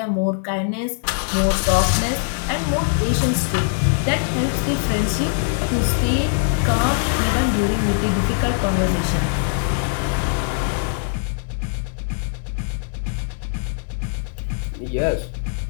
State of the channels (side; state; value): right; silent; digital silence